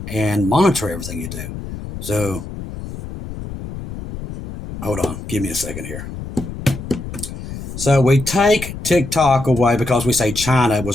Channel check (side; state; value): left; noise; rumble, 10 dB below the sound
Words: and monitor everything you do. So, hold on. Give me a second here. So we take TikTok away because we say China